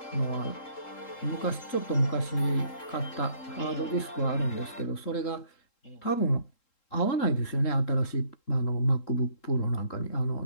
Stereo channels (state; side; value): late; right; 3.7 ms